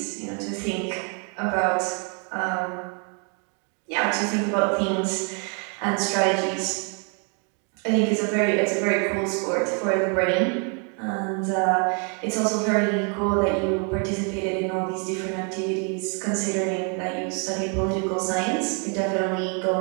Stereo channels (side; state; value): left; quieter; 38.4 dB